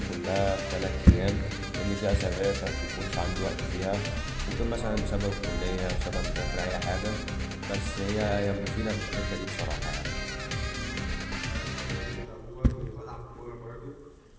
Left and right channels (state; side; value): identical; both; correlation 1.00